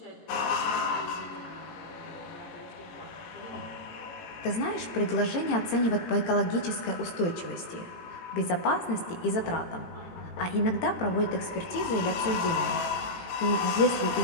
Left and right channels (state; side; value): late; right; 18 ms